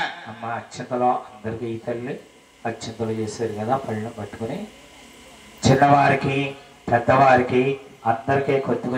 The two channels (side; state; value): both; identical; correlation 1.00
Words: అమ్మా అత్యంతలో అందరికి ఈ తల్లి అత్యంతలు చేశారు కదా, పళ్ళను పట్టుకుని చిన్నవారికి పెద్దవారికి అందరికీ